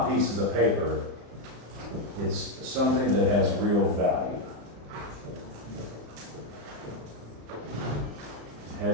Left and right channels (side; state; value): left; late; 35 ms